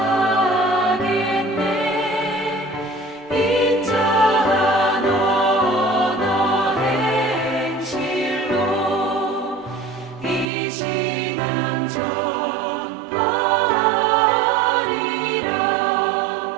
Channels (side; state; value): left; drops out; at 10.5 s